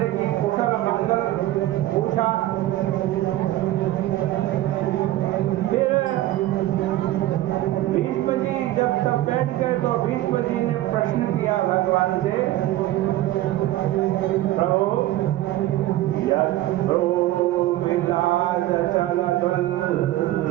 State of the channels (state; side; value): quieter; left; 15.3 dB